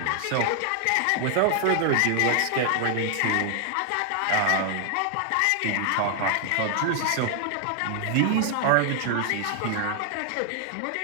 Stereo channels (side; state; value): both; different; correlation 0.00